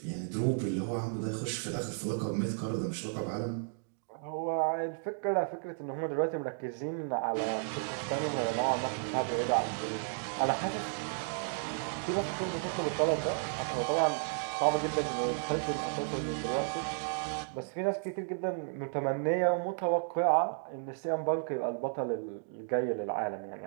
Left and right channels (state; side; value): silent; left; digital silence